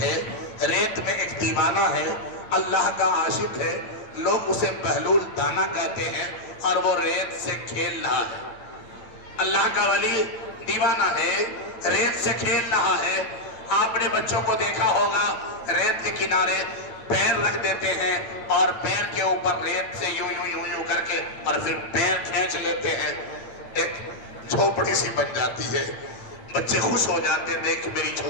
ہے, ریت میں ایک دیوانہ ہے, اللہ کا عاشق ہے, لوگ اسے بہلول دانا کہتے ہیں, اور وہ ریت سے کھیل رہا ہے. اللہ کا ولی دیوانہ ہے, ریت سے کھیل رہا ہے. آپ نے بچوں کو دیکھا ہوگا ریت کے کنارے پیر رکھ دیتے ہیں اور پیر کے اوپر ریت سے یوں یوں یوں یوں کر کے اور پھر پیر کھینچ لیتے ہیں, ایک جھوپڑی سی بن جاتی ہے. بچے خوش ہو جاتے ہیں دیکھ میری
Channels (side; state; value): right; late; 8.9 ms